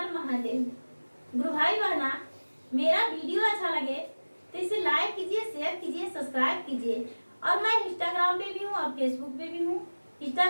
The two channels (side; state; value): both; inverted; correlation -1.00